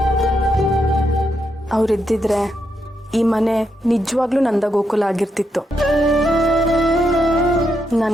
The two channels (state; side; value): normal; both; correlation 0.81